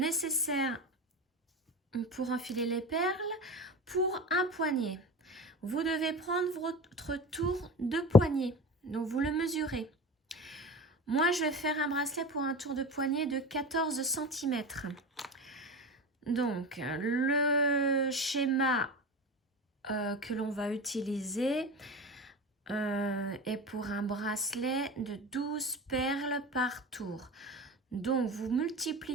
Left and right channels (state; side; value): normal; both; correlation 0.30